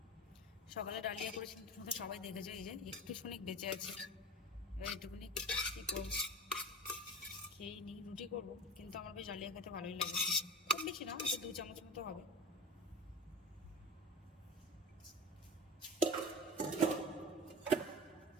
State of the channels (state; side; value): normal; both; correlation 0.32